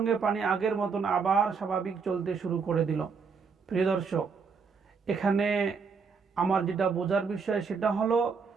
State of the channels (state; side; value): quieter; left; 5.4 dB